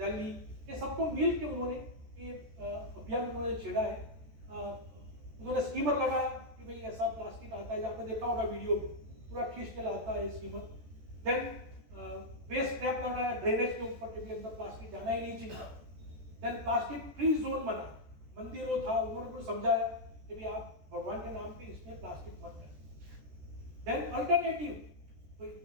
ये सबको मिल के उन्होंने ये अभियान उन्होंने छेड़ा है। उन्होंने स्टीमर लगाया कि भाई ऐसा प्लास्टिक आता है, आपने देखा होगा वीडियो में, पूरा खींच के लाता है स्टीमर। देन वेस्ट ट्रैप लगाया ड्रेनेज के ऊपर कि अंदर प्लास्टिक जाना ही नहीं चाहिए। देन प्लास्टिक फ्री जोन बना, मंदिरों था, उन्होंने कुछ समझाया कि भाई आप भगवान के नाम पे इसमें प्लास्टिक मत करें। देन अल्टरनेटिव, कोई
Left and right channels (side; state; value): left; late; 14 ms